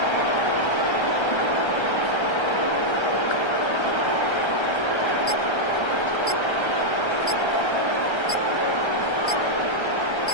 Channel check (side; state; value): right; late; 1.3 ms